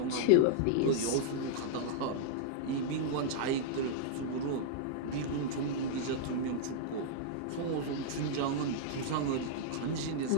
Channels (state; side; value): different; both; correlation -0.01